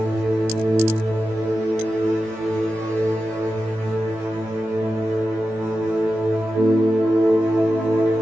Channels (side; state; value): left; late; 18 ms